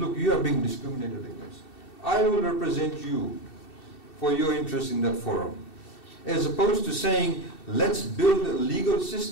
you are being discriminated against. I will represent you for your interest in that forum. As opposed to saying, let's build legal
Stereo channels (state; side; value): late; right; 2.7 ms